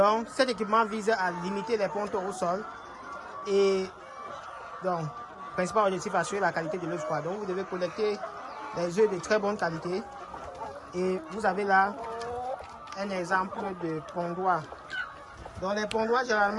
cet équipement vise à limiter les pontes au sol et donc principal objectif assurer la qualité de l'œuf. Donc vous devez collecter les œufs de très bonne qualité. Et vous avez là un exemple de pondoir. Donc les pondoirs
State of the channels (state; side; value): identical; both; correlation 1.00